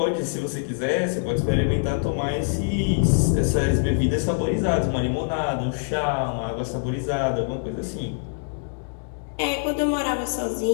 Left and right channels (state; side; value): silent; right; 62 dB below the other